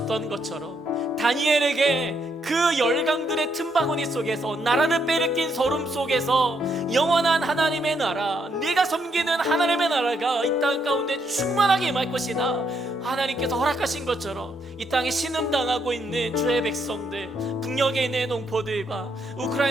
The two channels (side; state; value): both; normal; correlation 0.75